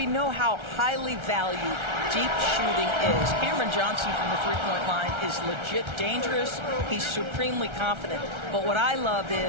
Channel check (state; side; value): late; left; 1.3 ms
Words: know how highly valued deep shooting is. Cameron Johnson from the three-point line is legit dangerous. He's supremely confident. But what I love